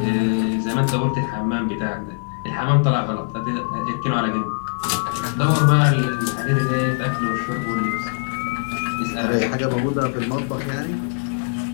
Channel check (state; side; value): silent; right; 60 dB below the other